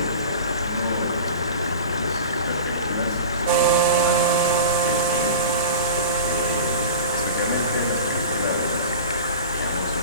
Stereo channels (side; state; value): both; inverted; correlation -0.35